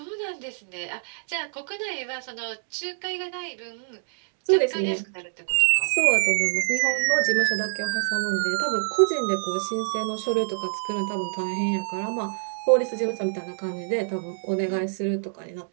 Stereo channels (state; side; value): silent; left; digital silence